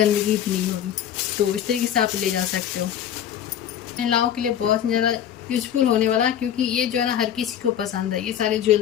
भी नहीं होगी। तो इस तरीके से आप ले जा सकते हो। महिलाओं के लिए बहुत ज़्यादा यूजफुल होने वाला है, क्योंकि ये जो है ना हर किसी को पसंद है। ये सारे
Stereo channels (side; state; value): right; quieter; 9.9 dB